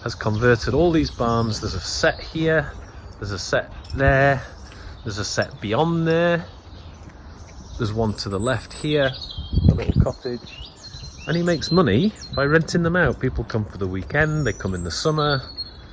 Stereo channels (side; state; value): both; identical; correlation 1.00